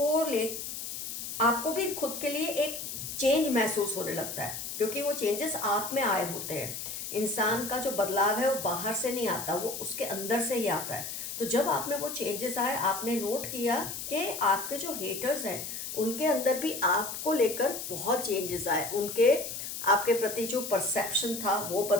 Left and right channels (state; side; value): noise; left; hiss, 6 dB below the sound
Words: भी खुद के लिए एक चेंज महसूस होने लगता है, क्योंकि वो चेंजेस आप में आए होते हैं। इंसान का जो बदलाव है वो बाहर से नहीं आता, वो उसके अंदर से ही आता है। तो जब आप में वो चेंजेस आए, आपने नोट किया कि आपके जो हेटर्स हैं उनके अंदर भी आपको लेकर बहुत चेंजेस आए, उनके आपके प्रति जो परसेप्शन था वो